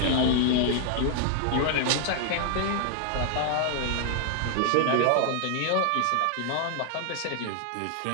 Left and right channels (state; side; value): different; both; correlation 0.00